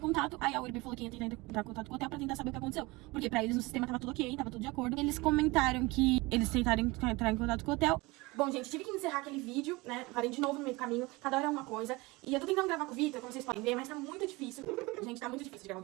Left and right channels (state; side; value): quieter; left; 23.2 dB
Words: contato. Aí a URB falou que ia tentar entrar em contato com o hotel pra tentar saber o que aconteceu. Porque pra eles no sistema tava tudo ok, tava tudo de acordo. Eles comentaram que eles tentaram entrar em contato com o hotel. Bom, gente, tive que encerrar aquele vídeo, né? Parei de novo no meio do caminho, cada hora é uma coisa. E eu tô tentando gravar com o Vitor, como vocês podem ver, mas tá muito difícil. Gente, tá muito difícil de gravar um